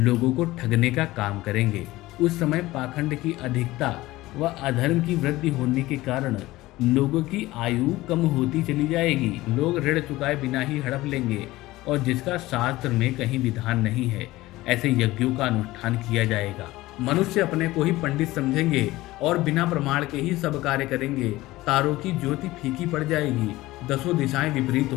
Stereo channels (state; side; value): quieter; right; 18.1 dB